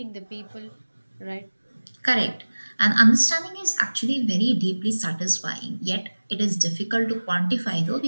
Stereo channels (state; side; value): inverted; both; correlation -1.00